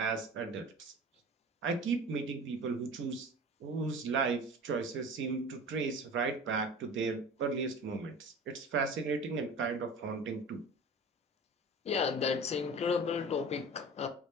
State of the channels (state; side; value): normal; both; correlation 0.38